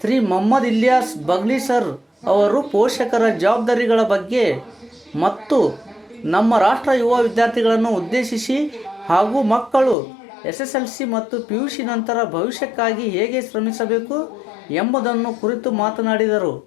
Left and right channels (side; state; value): right; drops out; at 10.0 s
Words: ಶ್ರೀ ಮೊಹಮ್ಮದ್ ಇಲಿಯಾಸ್ ಬಗ್ಲಿ ಸರ್ ಅವರು ಪೋಷಕರ ಜವಾಬ್ದಾರಿಗಳ ಬಗ್ಗೆ ಮತ್ತು ನಮ್ಮ ರಾಷ್ಟ್ರ ಯುವ ವಿದ್ಯಾರ್ಥಿಗಳನ್ನು ಉದ್ದೇಶಿಸಿ ಹಾಗೂ ಮಕ್ಕಳು SSLC ಮತ್ತು PUC ನಂತರ ಭವಿಷ್ಯಕ್ಕಾಗಿ ಹೇಗೆ ಶ್ರಮಿಸಬೇಕು ಎಂಬುದನ್ನು ಕುರಿತು ಮಾತನಾಡಿದರು.